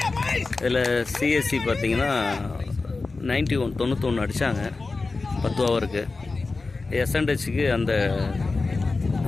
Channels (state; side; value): quieter; right; 3.8 dB